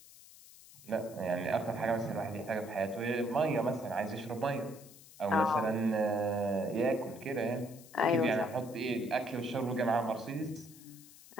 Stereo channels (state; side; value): noise; left; hiss, 20 dB below the sound